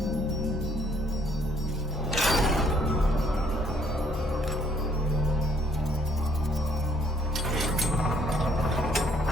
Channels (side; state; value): both; normal; correlation 0.65